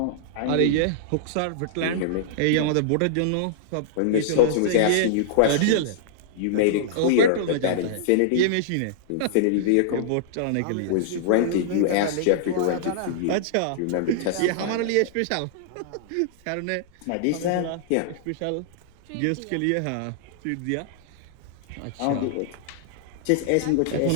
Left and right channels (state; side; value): different; both; correlation -0.02